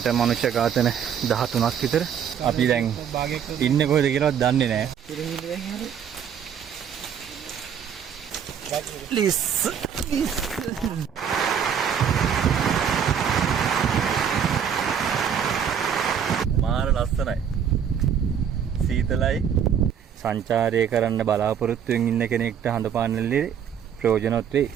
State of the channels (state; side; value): quieter; left; 8.1 dB